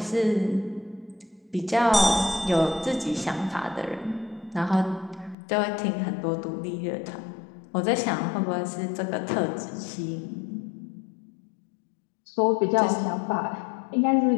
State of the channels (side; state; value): right; drops out; at 5.4 s